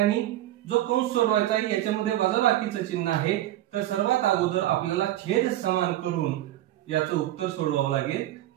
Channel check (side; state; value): left; quieter; 14.2 dB